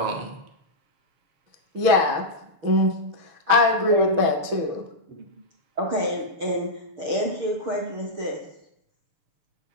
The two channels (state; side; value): late; left; 6.8 ms